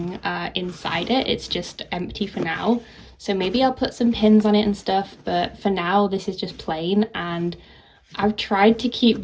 inside it. It's just empty for now. So maybe I'll put some pins on it and stuff, but for now this is just plain. And I've tried to keep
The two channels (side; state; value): both; identical; correlation 1.00